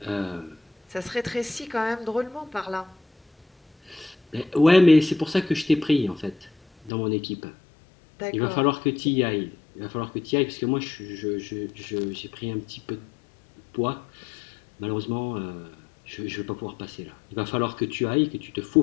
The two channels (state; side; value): drops out; right; at 6.9 s